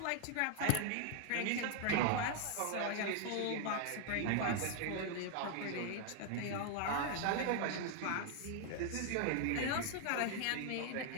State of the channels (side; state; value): both; different; correlation 0.00